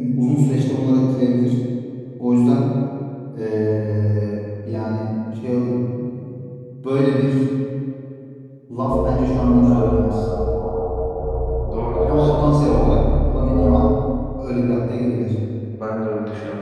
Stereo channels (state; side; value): identical; both; correlation 1.00